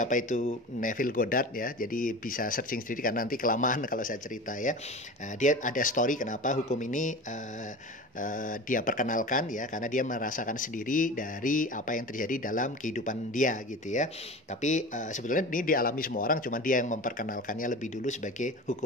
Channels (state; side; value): normal; both; correlation 0.33